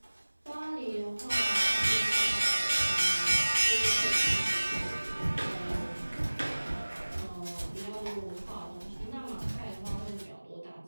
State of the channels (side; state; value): both; inverted; correlation -1.00